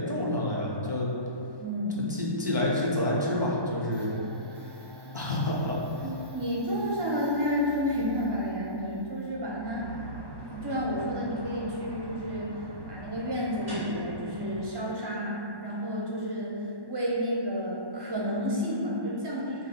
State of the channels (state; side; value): late; left; 1.1 ms